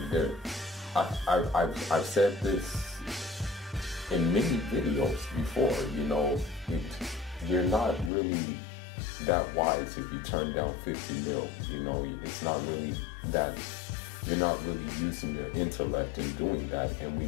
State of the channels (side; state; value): right; drops out; at 8.1 s